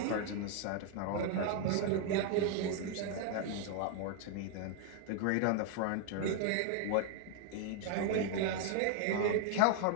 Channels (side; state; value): both; different; correlation 0.00